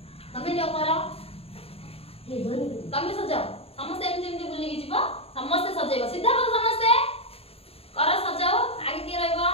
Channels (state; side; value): late; right; 0.28 ms